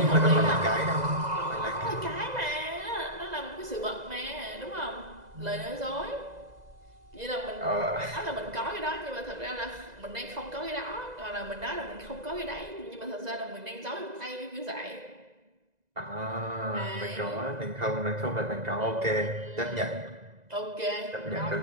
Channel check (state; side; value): late; left; 2.0 ms